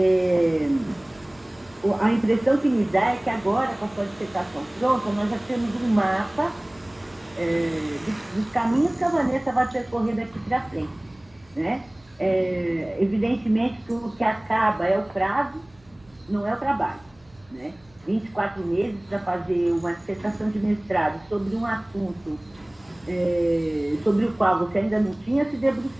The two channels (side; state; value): right; noise; hum, 29 dB below the sound